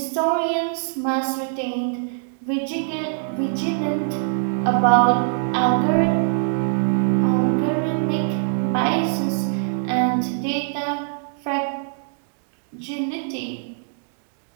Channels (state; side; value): silent; left; digital silence